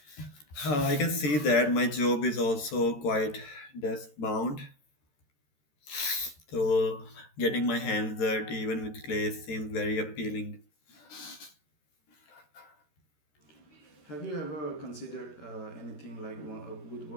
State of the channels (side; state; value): right; late; 13 ms